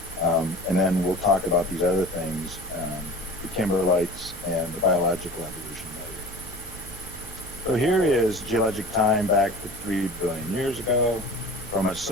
And then we'll talk about these other things, the Kimberlites and the biological evolution later. So here is geologic time back to 3 billion years ago from an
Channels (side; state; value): right; noise; hum, 17 dB below the sound